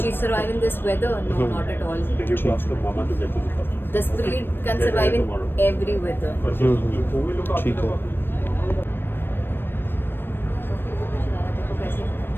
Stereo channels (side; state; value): right; late; 0.099 ms